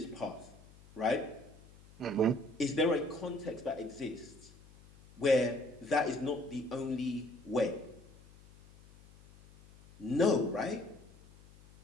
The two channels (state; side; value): noise; left; hum, 23 dB below the sound